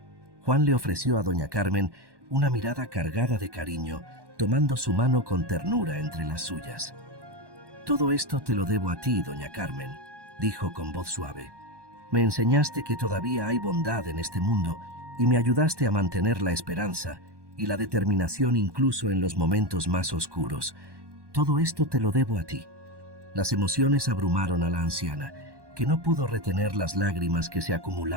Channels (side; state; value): left; late; 1.1 ms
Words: Juan le ofreció a doña Carmen una mirada cargada de cariño, tomando su mano con ternura entre las suyas. Todo esto te lo debo a ti, doña Carmen, dijo con voz suave. Me enseñaste que todavía hay bondad en este mundo y me ayudaste a mantener la esperanza y la determinación incluso en los momentos más oscuros. Todo esto te lo debo a ti. Las emociones abrumaron a la anciana, que no pudo retener las lágrimas que se